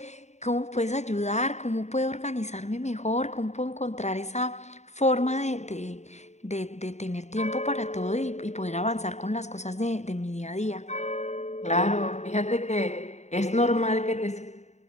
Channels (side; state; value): right; late; 0.33 ms